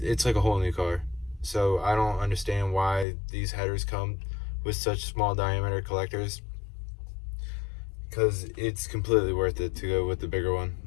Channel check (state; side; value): drops out; right; at 3.1 s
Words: like a whole new car. So I don't understand why these headers come with such small diameter collectors, because it's completely worth it to go with the bigger one.